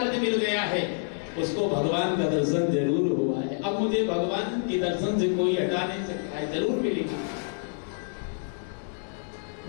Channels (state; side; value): silent; right; digital silence